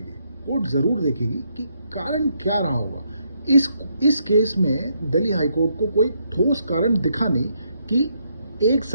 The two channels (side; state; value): both; inverted; correlation -0.75